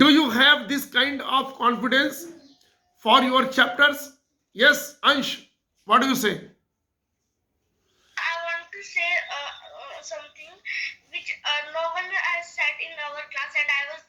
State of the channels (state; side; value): identical; both; correlation 1.00